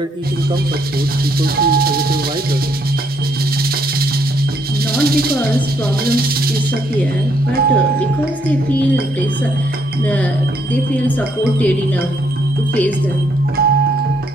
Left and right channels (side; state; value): both; normal; correlation 0.71